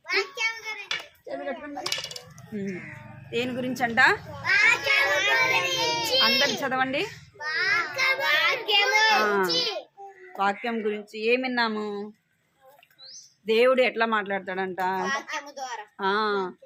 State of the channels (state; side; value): identical; both; correlation 1.00